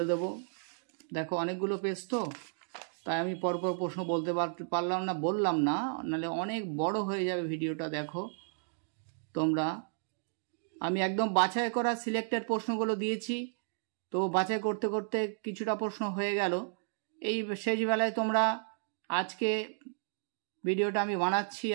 দেব। দেখো অনেকগুলো পেজ তো, তাই আমি পরপর প্রশ্ন বলতে বললাম না, নাহলে অনেক বড় হয়ে যাবে ভিডিওটা। দেখো তোমরা আমি একদম বাছাই করা সিলেক্টেড প্রশ্নগুলো দিয়েছি, তো বাছাই করতে করতে কিছুটা প্রশ্ন হয়ে গেল। এই শেষ বেলায় তোমরা আজকে ভিডিওটা আমি বানাচ্ছি,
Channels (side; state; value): left; silent; digital silence